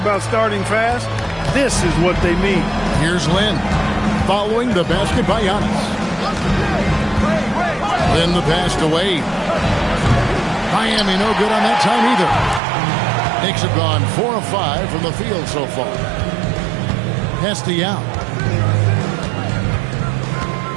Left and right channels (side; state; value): left; drops out; at 12.6 s